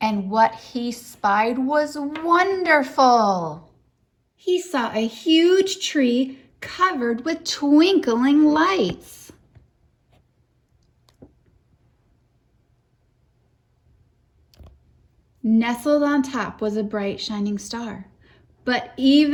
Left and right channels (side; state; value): both; identical; correlation 1.00